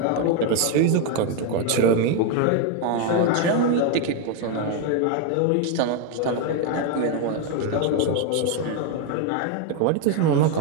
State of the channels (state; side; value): different; both; correlation 0.01